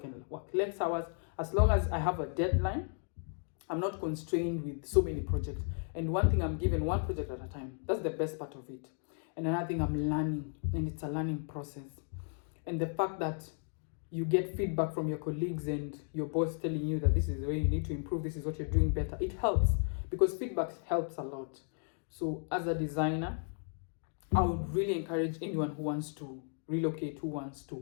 work less hours. As long as I have a deadline, I'm not constrained with so many projects. And one thing, I'm given one project at a time. That's the best part of it. And another thing, I'm learning, and it's a learning process. And the fact that you get feedback from your colleagues and your boss telling you that this is the way you need to improve, this is what you're doing better, it helps because feedback helps a lot. So as a designer, I would really encourage anyone who wants to relocate, who wants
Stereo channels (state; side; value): silent; right; 55 dB below the other